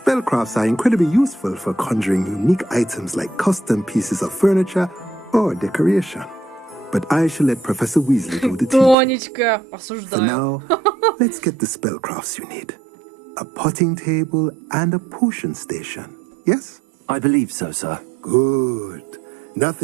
are incredibly useful for conjuring unique items like custom pieces of furniture or decoration. But I shall let Professor Weasley do the teaching. For now, let's get the spellcrafts you need. A potting table and a potion station. Yes? I believe so, sir. Good.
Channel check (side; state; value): left; drops out; at 9.0 s